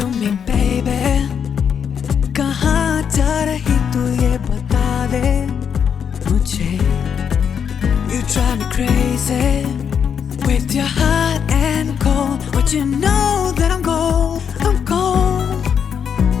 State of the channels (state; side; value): quieter; right; 7.5 dB